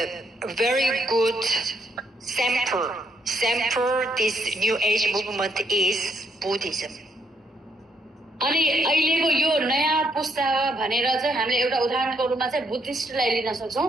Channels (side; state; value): both; normal; correlation 0.74